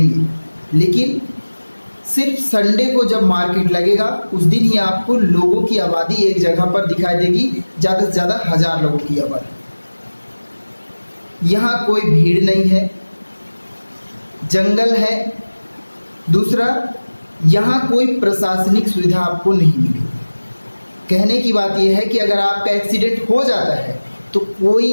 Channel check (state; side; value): inverted; both; correlation -1.00